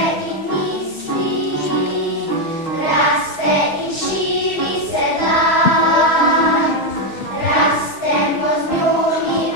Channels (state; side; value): late; right; 6.3 ms